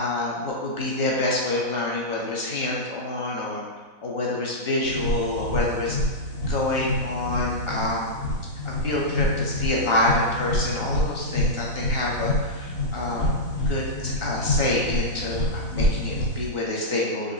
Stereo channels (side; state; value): left; late; 4.0 ms